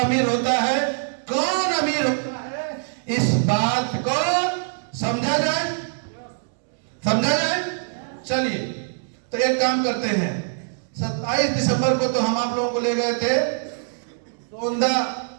होता है? कौन अमीर होता है? इस बात को समझा जाए, समझा जाए। चलिए तो एक काम करते हैं, 27 दिसंबर को तो हम आप लोगों को ले गए थे सोंदा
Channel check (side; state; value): left; silent; digital silence